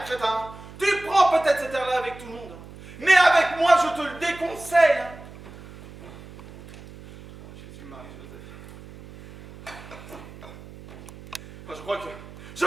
crétin. Tu prends peut-être cet air-là avec tout le monde. Mais avec moi, je te le déconseille. Hein. Jésus, Marie, Joseph. Enfin, je crois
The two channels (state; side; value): noise; right; hum, 17 dB below the sound